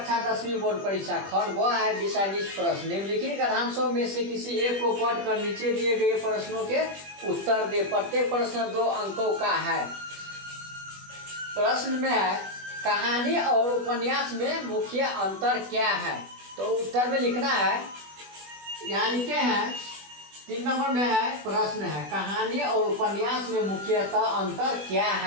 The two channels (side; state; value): left; late; 20 ms